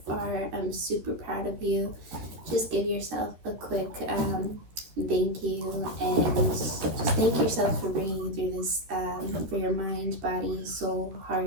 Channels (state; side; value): late; left; 13 ms